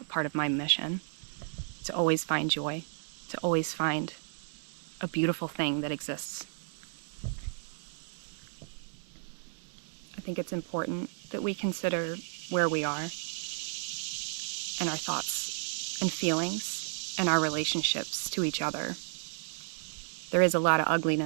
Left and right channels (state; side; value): silent; left; digital silence